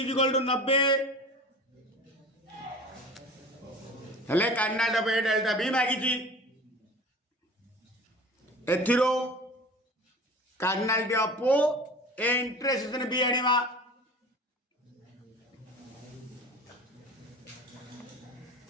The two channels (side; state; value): both; normal; correlation 0.39